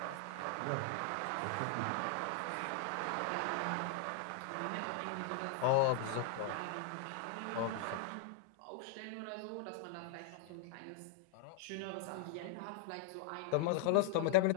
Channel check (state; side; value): different; both; correlation -0.01